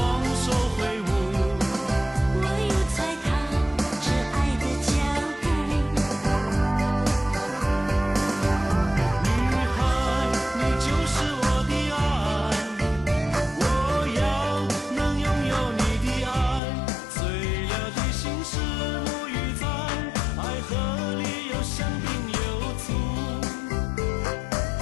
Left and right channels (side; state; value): right; drops out; at 16.6 s